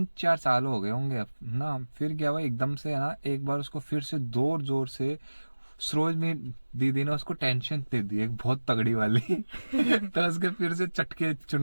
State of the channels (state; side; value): inverted; both; correlation -1.00